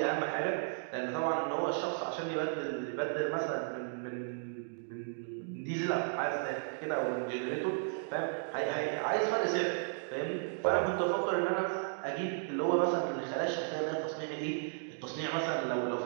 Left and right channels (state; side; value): silent; left; digital silence